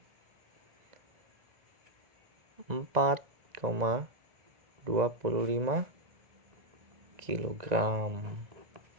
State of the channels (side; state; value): left; late; 1.9 ms